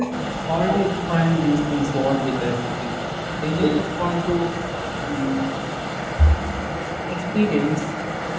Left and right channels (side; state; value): both; identical; correlation 1.00